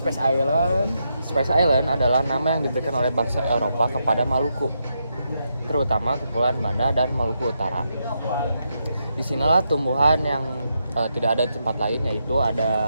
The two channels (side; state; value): both; inverted; correlation -0.82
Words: Island? Space Island adalah nama yang diberikan oleh bangsa Eropa kepada Maluku, terutama Kepulauan Banda dan Maluku Utara. Disinilah tumbuhan yang tidak ada di tempat lain, yaitu